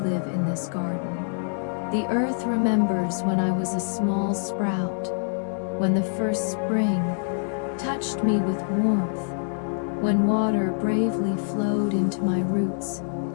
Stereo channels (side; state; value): right; silent; digital silence